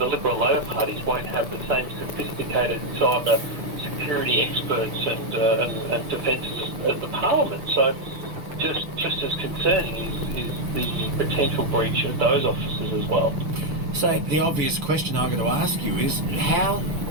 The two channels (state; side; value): late; left; 6.3 ms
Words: Liberal and Labor parties won't have the same sophisticated cyber security experts and defences as the Parliament. So just as concerning is the potential breach of those offices as well. So the obvious question I'm going to ask you is, how